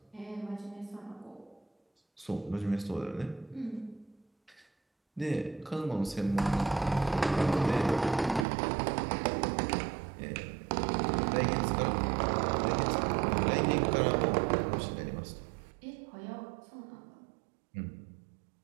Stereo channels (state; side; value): drops out; left; at 8.5 s